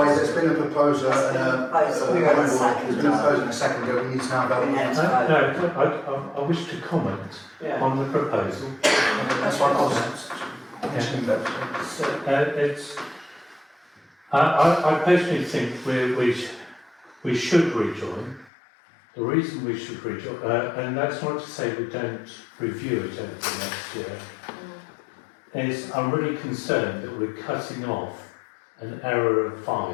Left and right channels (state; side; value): drops out; right; at 18.5 s